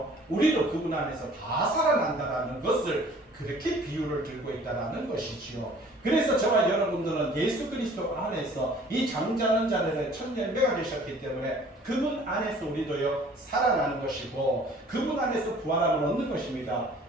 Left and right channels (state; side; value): normal; both; correlation 0.52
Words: 우리도 그분 안에서 다 살아난다라는 것을 그렇게 비유를 들고 있다라는 것이지요. 그래서 저와 여러분들은 예수 그리스도 안에서 이 잠자는 자들의 첫 열매가 되셨기 때문에 그분 안에서 우리도요, 살아나는 것이고 그분 안에서 부활함을 얻는 것입니다.